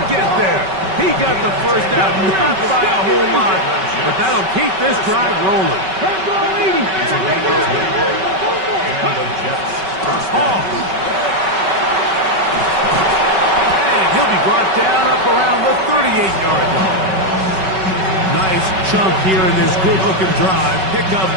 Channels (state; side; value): late; left; 5.3 ms